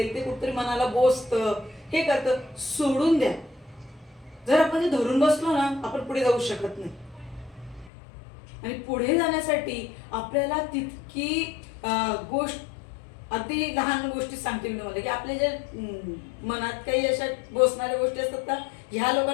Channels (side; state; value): right; drops out; at 7.9 s